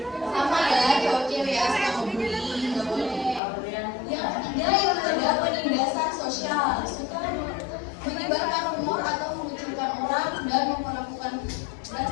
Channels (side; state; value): right; drops out; at 3.4 s